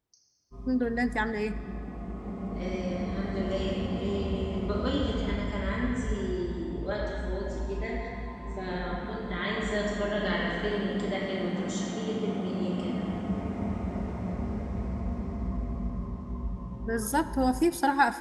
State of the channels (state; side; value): identical; both; correlation 1.00